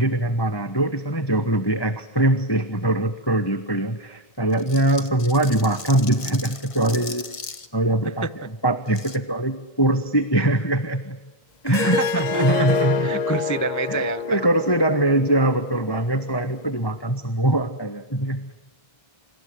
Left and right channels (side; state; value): right; late; 1.5 ms